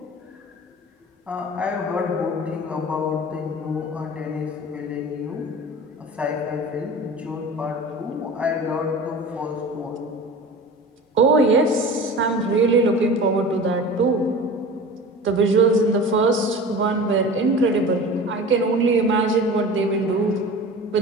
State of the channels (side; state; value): both; normal; correlation 0.36